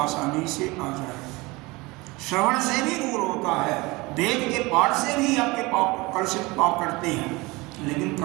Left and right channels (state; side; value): quieter; left; 23.2 dB